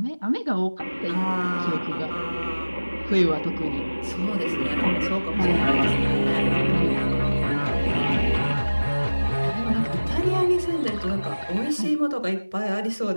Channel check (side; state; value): both; inverted; correlation -1.00